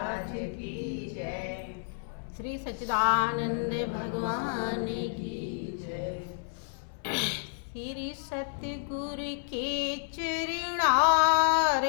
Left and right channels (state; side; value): silent; right; 57 dB below the other